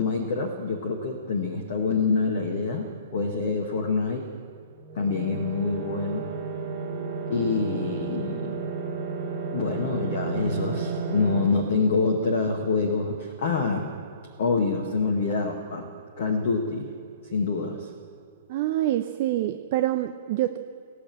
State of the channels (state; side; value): inverted; both; correlation -0.50